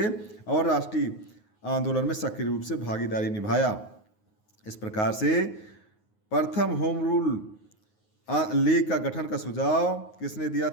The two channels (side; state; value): right; late; 9.5 ms